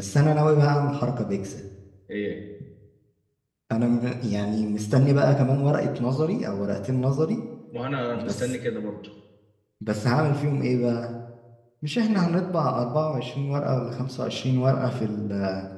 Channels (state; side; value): identical; both; correlation 1.00